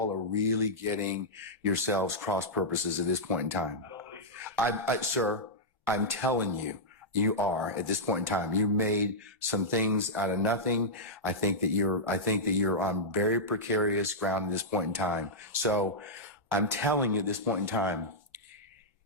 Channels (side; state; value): both; normal; correlation -0.10